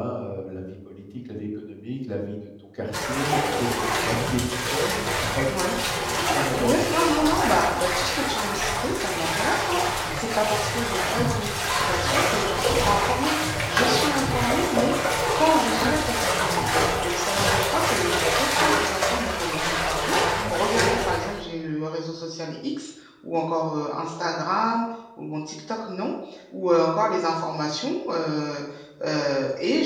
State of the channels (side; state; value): both; identical; correlation 1.00